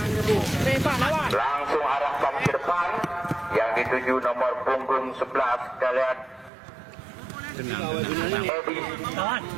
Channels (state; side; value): drops out; left; at 6.5 s